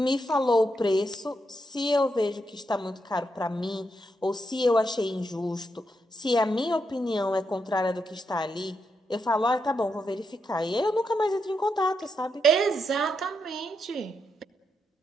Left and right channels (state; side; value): normal; both; correlation 0.82